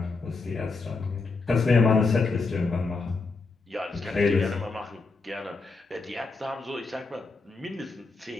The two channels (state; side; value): quieter; right; 4.0 dB